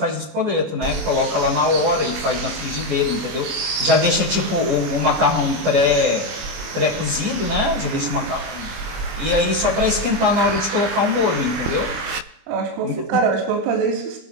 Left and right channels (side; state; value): left; late; 25 ms